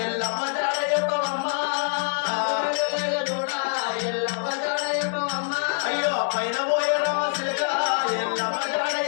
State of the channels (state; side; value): silent; right; digital silence